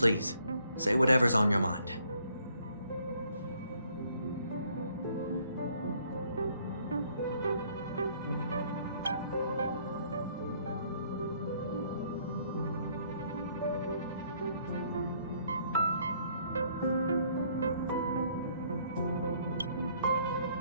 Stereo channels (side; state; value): both; inverted; correlation -0.65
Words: say whatever's on your mind.